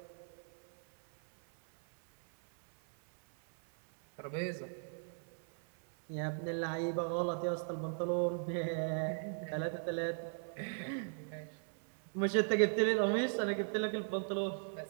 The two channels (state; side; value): silent; left; 53 dB below the other